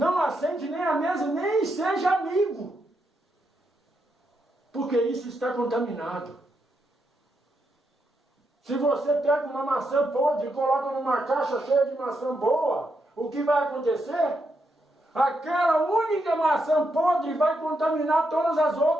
assente nem à mesa, nem seja amigo, porque isso está contaminado. Se você pega uma maçã podre e coloca numa caixa cheia de maçã boa, o que vai acontecer? Aquela única maçã podre vai contaminar todas as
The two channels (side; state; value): both; normal; correlation 0.81